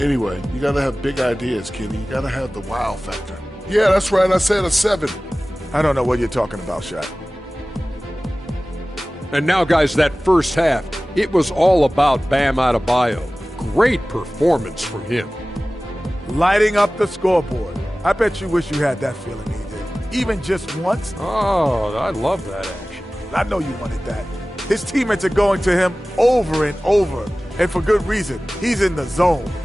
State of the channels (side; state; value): both; normal; correlation 0.97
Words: you got to have big ideas, Kenny. You got to have the wow factor. Yeah, that's right. I said a 7. I don't know what you're talking about, Shaq. And now, guys, that first half, it was all about Bam Adebayo. Great performance from him. Lighting up the scoreboard. I bet you wish you had that feeling, AJ. Even just once. Oh, I love that action. I know you wanted that. His teammates are going to him over and over. And for good reason. He's in the zone.